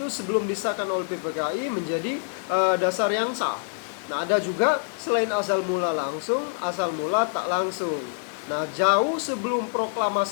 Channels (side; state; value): right; silent; digital silence